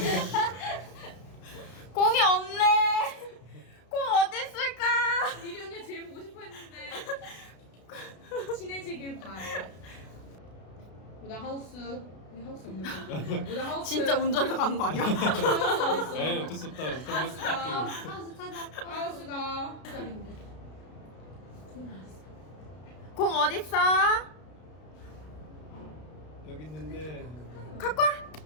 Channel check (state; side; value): late; right; 32 ms